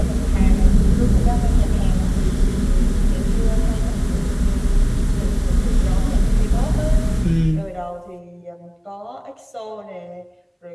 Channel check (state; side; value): identical; both; correlation 1.00